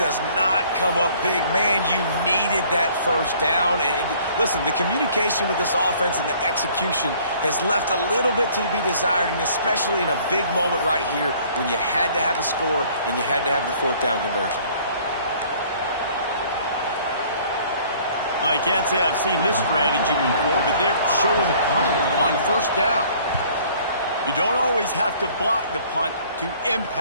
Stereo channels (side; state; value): both; inverted; correlation -0.56